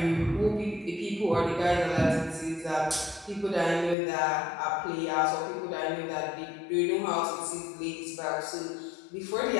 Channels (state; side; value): drops out; right; at 4.0 s